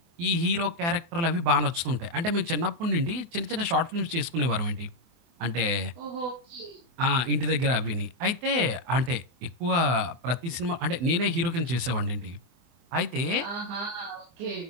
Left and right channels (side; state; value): left; late; 24 ms